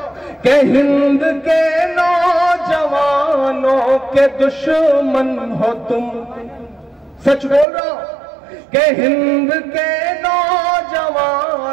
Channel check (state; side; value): drops out; left; at 7.7 s